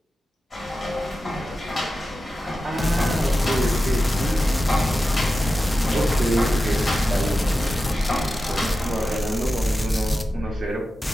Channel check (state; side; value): normal; both; correlation 0.92